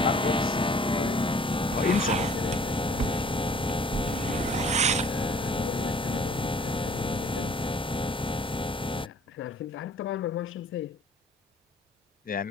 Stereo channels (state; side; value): normal; both; correlation 0.54